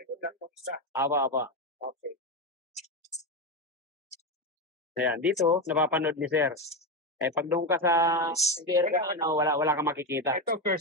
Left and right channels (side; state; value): both; normal; correlation 0.13